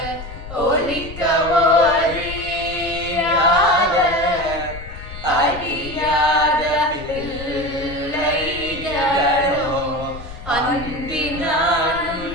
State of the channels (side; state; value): left; noise; rumble, 13 dB below the sound